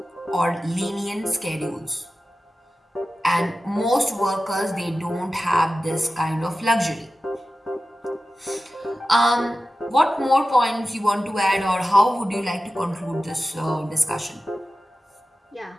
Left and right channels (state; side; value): normal; both; correlation 0.94